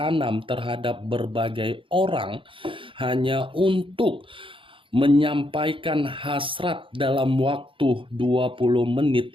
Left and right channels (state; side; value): late; left; 0.25 ms